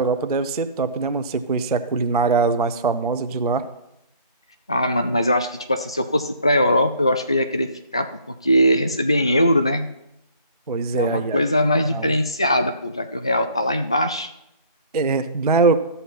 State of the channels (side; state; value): both; inverted; correlation -0.53